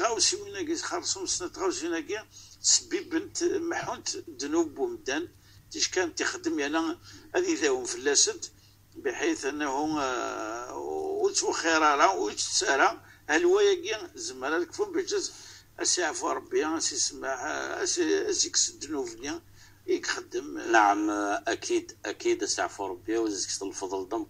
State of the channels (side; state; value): both; identical; correlation 1.00